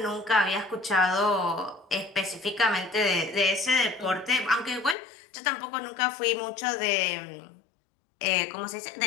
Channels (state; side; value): drops out; right; at 5.0 s